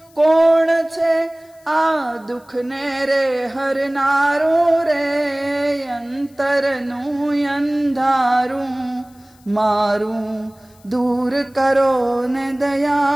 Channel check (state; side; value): noise; left; hiss, 30 dB below the sound